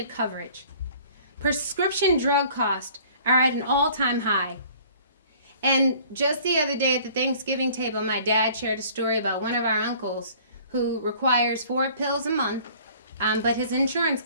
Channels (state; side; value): inverted; both; correlation -0.52